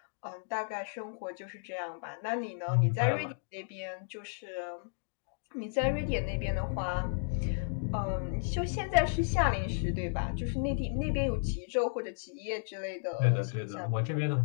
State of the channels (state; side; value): silent; right; digital silence